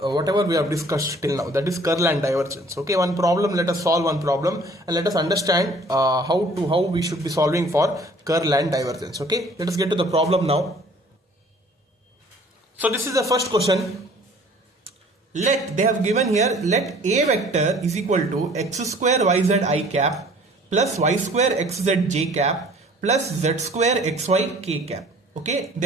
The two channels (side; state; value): both; normal; correlation 0.53